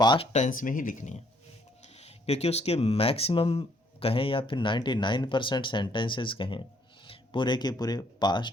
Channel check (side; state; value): both; normal; correlation 0.67